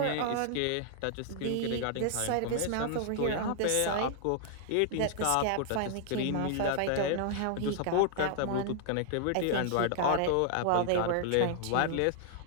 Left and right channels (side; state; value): both; different; correlation -0.01